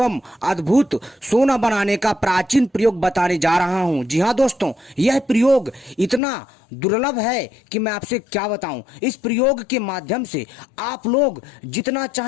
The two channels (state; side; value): drops out; right; at 6.2 s